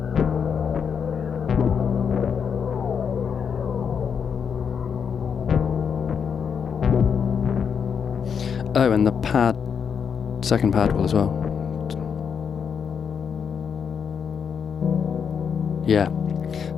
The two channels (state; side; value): quieter; right; 6.9 dB